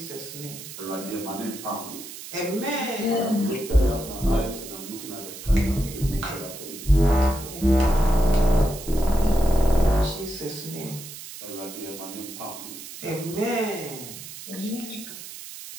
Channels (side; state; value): right; noise; hiss, 12 dB below the sound